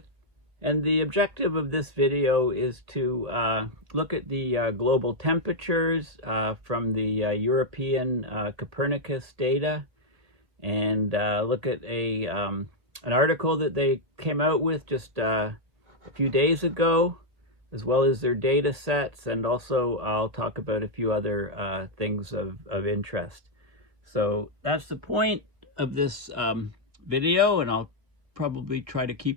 and the objective of this video is to look at the global temperatures from the European Copernicus data, and look at an article that they came out with just a few days ago, as well as their data sets, and also I'll talk about a few other things of interest. So that's the point of this video, and I'll probably try to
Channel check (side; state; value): left; late; 1.4 ms